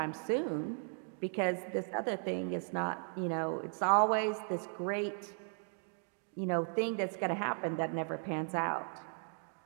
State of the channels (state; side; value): silent; left; 53 dB below the other